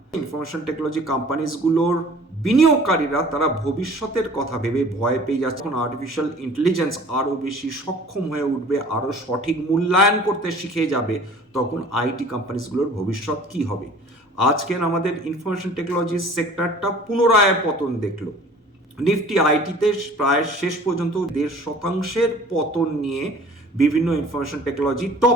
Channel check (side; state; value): both; normal; correlation 0.48